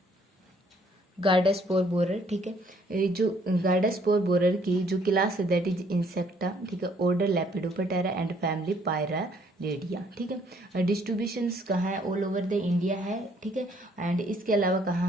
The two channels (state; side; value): normal; both; correlation 0.64